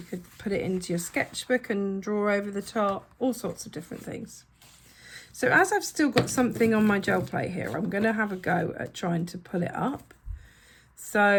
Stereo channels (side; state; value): both; identical; correlation 1.00